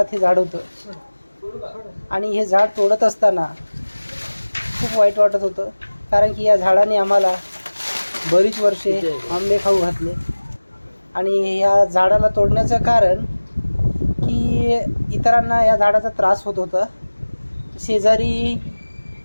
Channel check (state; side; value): inverted; both; correlation -1.00